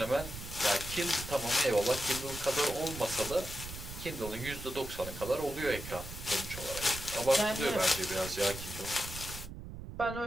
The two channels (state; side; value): noise; right; rumble, 10 dB below the sound